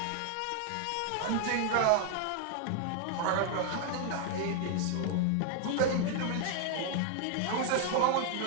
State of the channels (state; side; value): different; both; correlation 0.00